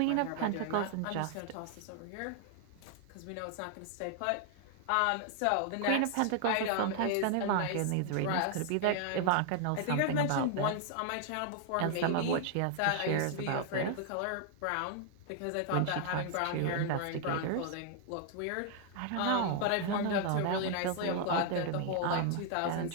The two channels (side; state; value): both; different; correlation 0.00